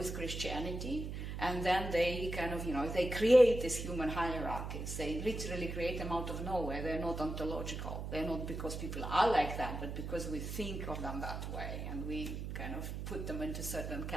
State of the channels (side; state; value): right; noise; hum, 5 dB below the sound